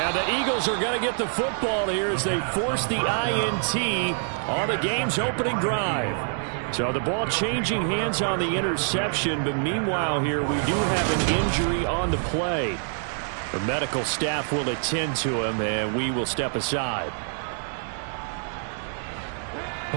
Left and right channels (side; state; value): left; silent; digital silence